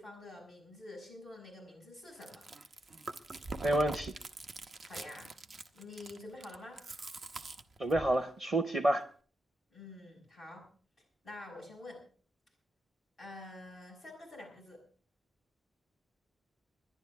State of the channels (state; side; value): normal; both; correlation 0.84